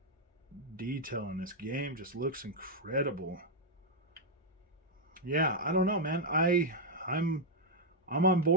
detail in this game. Just looks incredible. Yeah, I don't know, man. I'm on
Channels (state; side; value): normal; both; correlation -0.02